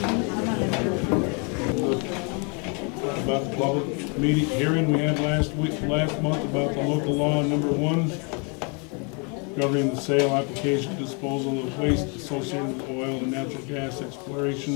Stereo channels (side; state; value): right; quieter; 35.0 dB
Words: About the public meeting hearing we had last month about the local law number 1 governing the sale, application, disposal of waste associated with oil and natural gas